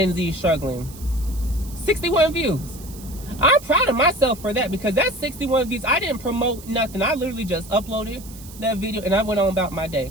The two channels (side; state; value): right; noise; hiss, 18 dB below the sound